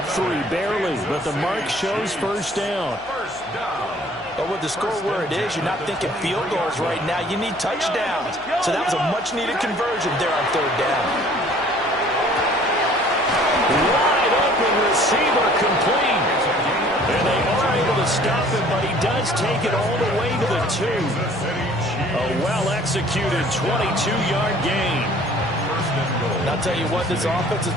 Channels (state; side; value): noise; left; hum, 24 dB below the sound